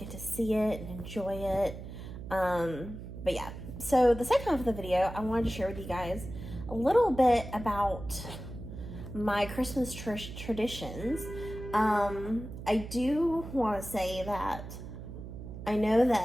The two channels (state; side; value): noise; right; hum, 10 dB below the sound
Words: to see it and enjoy it. But yeah, so the second half of the video, I wanted to share with you guys a little bit about my Christmas traditions. I do want to say that I know